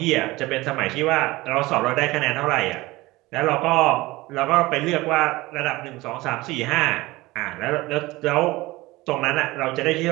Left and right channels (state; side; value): quieter; left; 20.2 dB